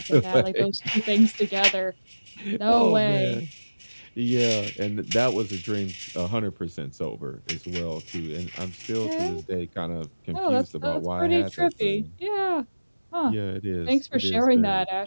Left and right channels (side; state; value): both; inverted; correlation -1.00